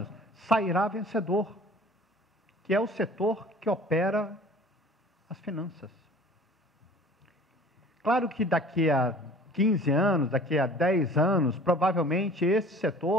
sairá vencedor, que é o setor que opera as finanças. Claro que daqui a 15 anos, daqui a 10 anos, provavelmente esse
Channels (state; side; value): normal; both; correlation 0.47